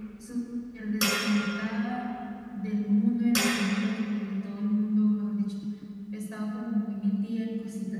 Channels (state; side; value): identical; both; correlation 1.00